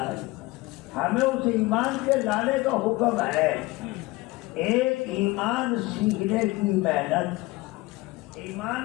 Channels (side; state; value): right; quieter; 20.9 dB